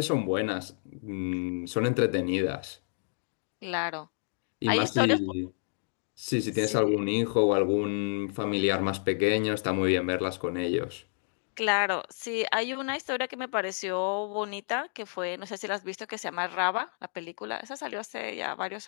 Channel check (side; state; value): right; silent; digital silence